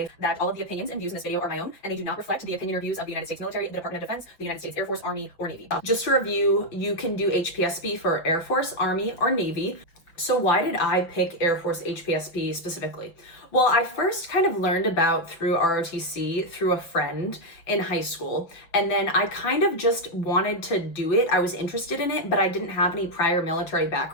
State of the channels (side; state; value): right; late; 5.9 ms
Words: that all of the opinions and views in this video are my own, and they do not reflect the opinion or views of the United States military, the Department of Defense, the United States Air Force, Army, or Navy. Just to review, you can do HPSP for Air Force, Army, or Navy. So why did I pick Air Force HPSP specifically? Well, I first kind of learned about through ROTC through a friend in high school, and then I kind of just wanted to do it. I was interested in it, but I didn't have any prior military